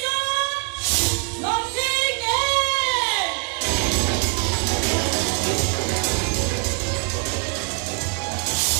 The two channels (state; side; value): quieter; left; 35.2 dB